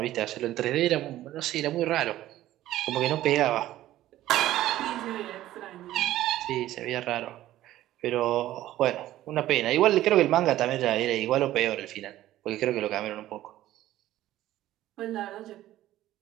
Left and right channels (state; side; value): quieter; left; 14.3 dB